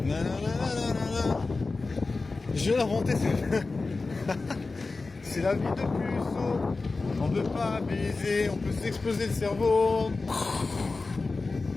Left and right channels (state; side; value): quieter; right; 3.8 dB